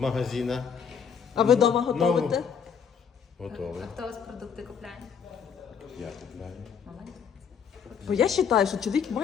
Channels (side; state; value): right; quieter; 7.0 dB